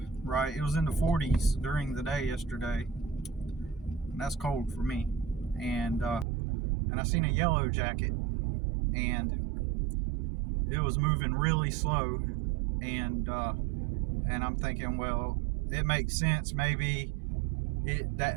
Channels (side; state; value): left; drops out; at 6.2 s